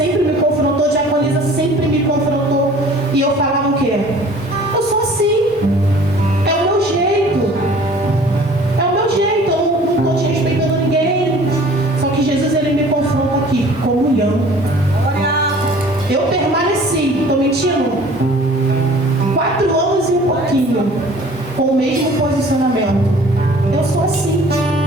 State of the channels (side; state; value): both; normal; correlation 0.49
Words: me confrontou, a diaconisa sempre me confrontou. E eu falava o quê? Eu sou assim. É o meu jeito. É o meu jeito. Eu não estou desrespeitando ninguém. Só que Jesus, ele me confronta aqui. Comunhão. Eu permaneci. Estou mentindo? 4 anos e um pouquinho. Com o mesmo posicionamento. Eu sou assim.